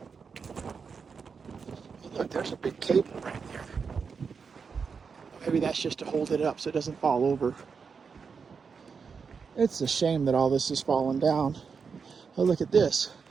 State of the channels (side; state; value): left; quieter; 5.7 dB